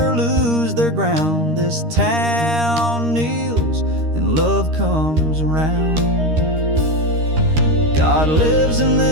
lose their ground, this town kneels and love comes around. God lives in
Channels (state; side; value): late; left; 13 ms